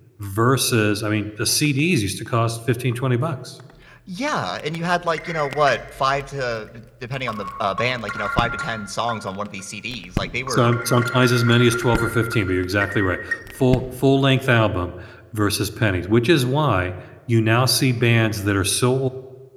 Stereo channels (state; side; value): identical; both; correlation 1.00